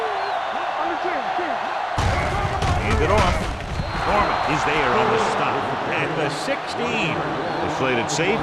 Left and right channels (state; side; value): identical; both; correlation 1.00